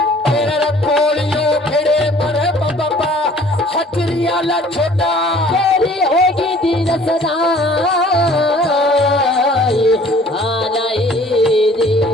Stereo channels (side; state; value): both; normal; correlation 0.53